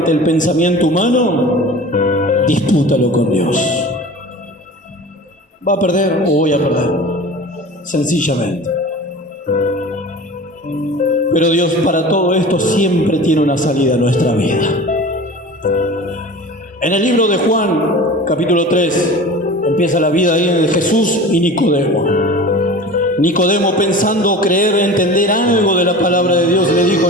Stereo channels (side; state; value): both; normal; correlation 0.37